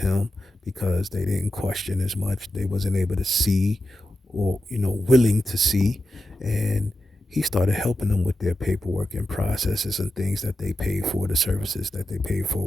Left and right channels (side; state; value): both; normal; correlation 0.90